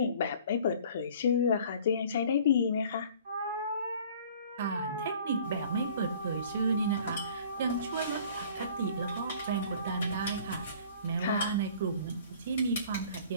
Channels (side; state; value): both; inverted; correlation -0.50